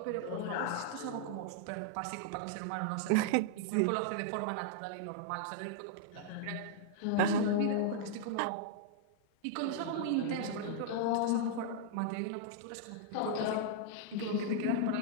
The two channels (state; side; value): different; both; correlation -0.01